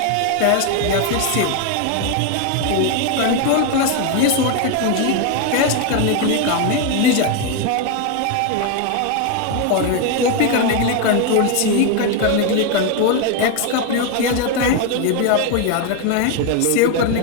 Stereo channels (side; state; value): both; different; correlation 0.01